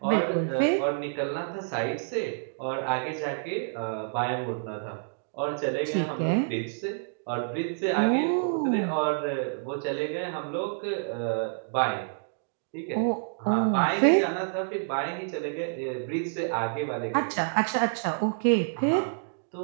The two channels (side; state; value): left; silent; digital silence